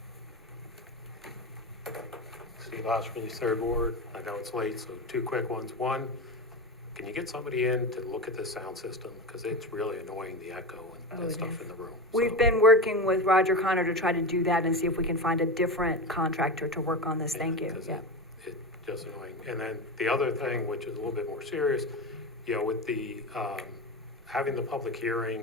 Steve Oshman, third ward. I know it's late, so two quick ones. One, can you get somebody in to look at the sound system? Because it's really annoying, the echo and stuff in the room. We've been working with Roger Connor to try to do that and see if we can find a different contractor to work on this. Thank you. Yeah. It's just annoying. And then the other thing, which is a little bit more serious, with the, having the public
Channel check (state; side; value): normal; both; correlation 0.22